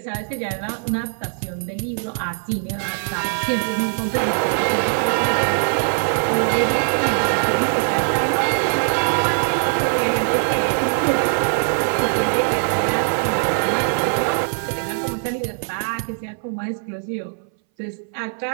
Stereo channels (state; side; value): silent; left; 61 dB below the other